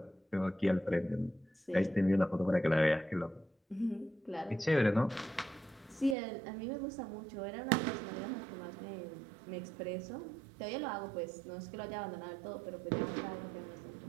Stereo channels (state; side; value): drops out; left; at 6.2 s